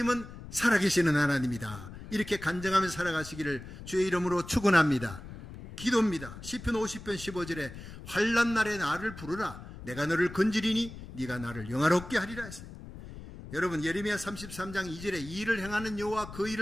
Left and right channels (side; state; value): left; noise; rumble, 13 dB below the sound